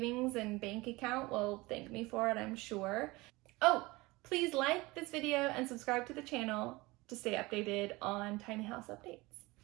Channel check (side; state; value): left; quieter; 22.1 dB